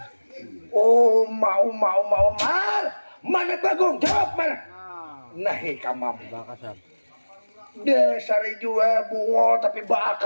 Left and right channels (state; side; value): inverted; both; correlation -1.00